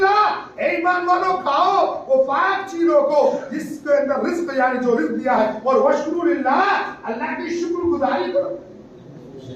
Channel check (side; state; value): both; identical; correlation 1.00